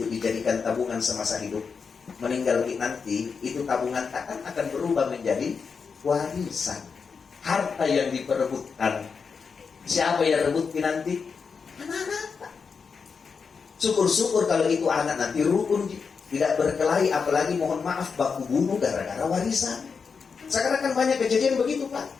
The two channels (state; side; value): quieter; right; 5.6 dB